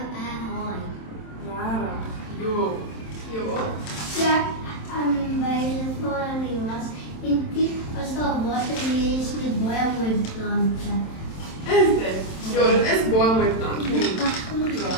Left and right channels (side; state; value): right; late; 27 ms